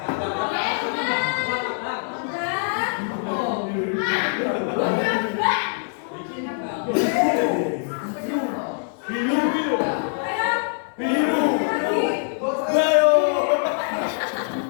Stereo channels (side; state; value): right; silent; digital silence